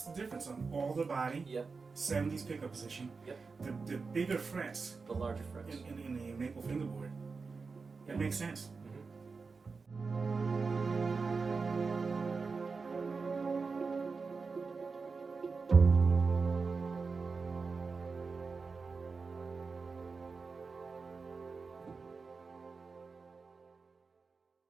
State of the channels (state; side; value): quieter; left; 4.6 dB